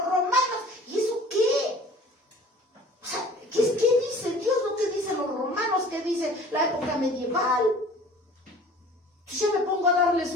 romanos. ¿Y eso qué? O sea, ¿qué dice Dios? ¿No qué dicen los romanos? ¿Qué dice la época medieval? Entonces ya me pongo a darles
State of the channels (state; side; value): normal; both; correlation 0.47